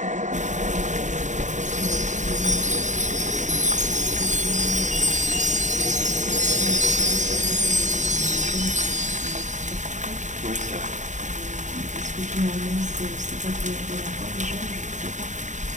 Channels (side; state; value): left; late; 0.35 ms